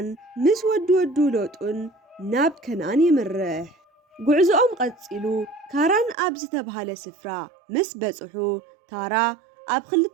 ምስ ወዱ ሎጡን ናብ ከነአን ይምርሕ። ጉዕዞኦም ቀፂሉ ካራን ኣብ ዝተባሃለ ስፍራ ምስ በጽሑ ታራ ኣብ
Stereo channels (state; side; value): drops out; left; at 6.2 s